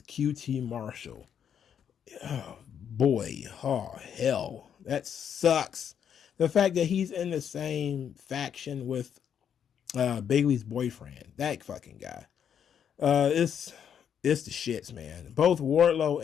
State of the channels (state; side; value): quieter; right; 8.4 dB